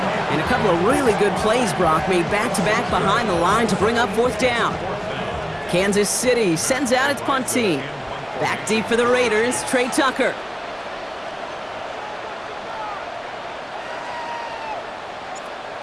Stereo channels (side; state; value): both; identical; correlation 1.00